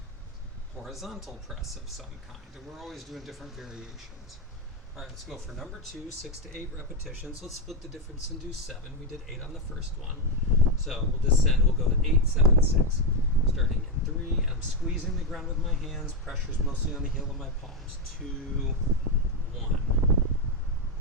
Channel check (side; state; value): both; normal; correlation 0.06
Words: horizontal press of some kind, and we're always doing different variations. All right, let's go for number 2, 6 to 8 repetitions. Let's split the difference and do 7. We did 8 on the first one. So we'll descend, we'll go 8, 7, 6. Starting in 3, and I'm squeezing the ground with my hands. Pressure's mostly on the heel of my palms. 2, 1.